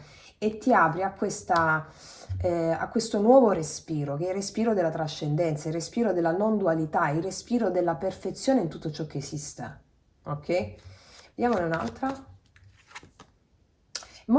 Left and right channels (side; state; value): both; identical; correlation 1.00